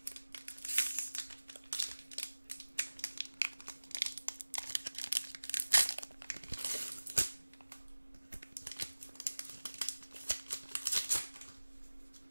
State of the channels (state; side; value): inverted; both; correlation -1.00